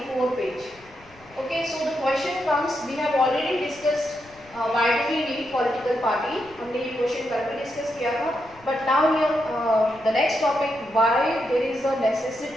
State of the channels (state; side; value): noise; left; rumble, 25 dB below the sound